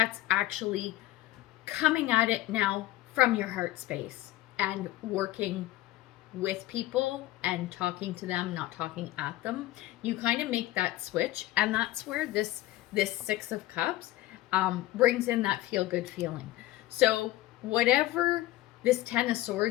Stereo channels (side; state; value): right; quieter; 16.3 dB